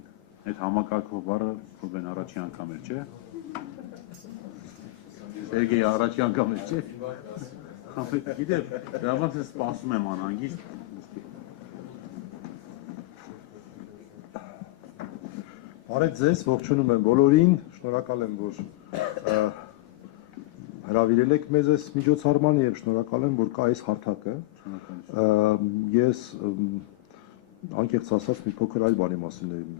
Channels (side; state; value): right; quieter; 19.2 dB